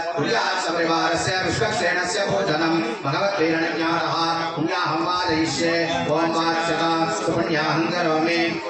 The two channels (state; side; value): identical; both; correlation 1.00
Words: कुर्यात् परिवारस्य विश्वक्षेणस्य भोजनं भगवद्वीरणज्ञानः पुण्याहं वादयिष्ये ॐ वाच्यता सुपुण्याहं करोमि